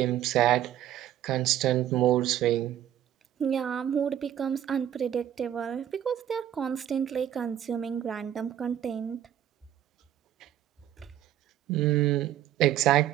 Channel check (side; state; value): left; quieter; 11.2 dB